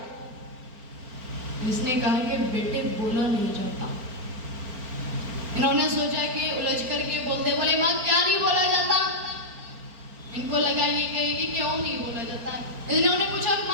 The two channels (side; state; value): left; late; 4.4 ms